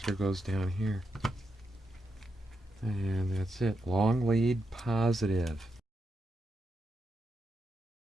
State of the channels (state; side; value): normal; both; correlation 0.84